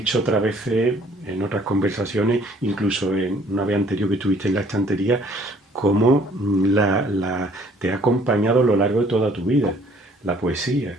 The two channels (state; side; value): normal; both; correlation 0.59